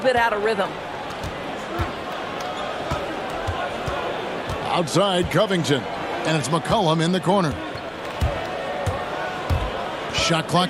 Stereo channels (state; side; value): identical; both; correlation 1.00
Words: out of rhythm. Outside Covington. And it's McCollum in the corner. Shot